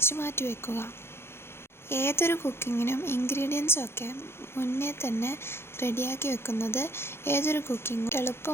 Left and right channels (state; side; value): late; right; 0.12 ms